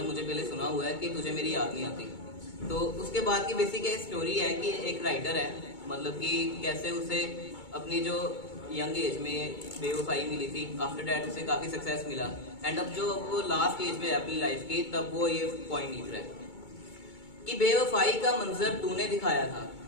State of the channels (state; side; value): late; right; 2.2 ms